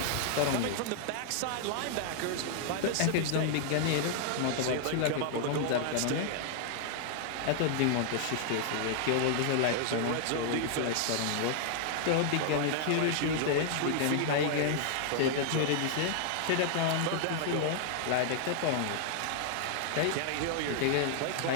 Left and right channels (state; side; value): different; both; correlation -0.01